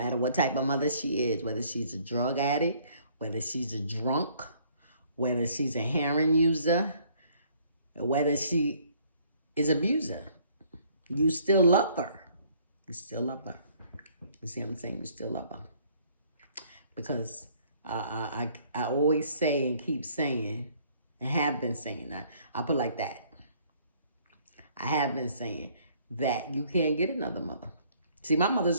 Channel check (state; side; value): inverted; both; correlation -0.61